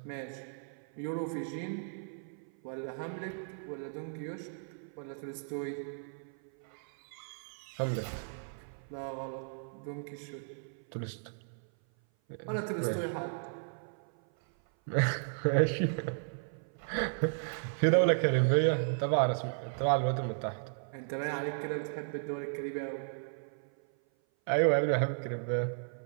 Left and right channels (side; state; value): left; silent; 55 dB below the other